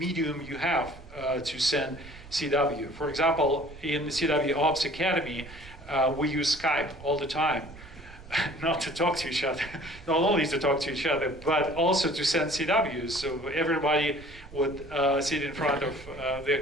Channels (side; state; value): right; noise; rumble, 18 dB below the sound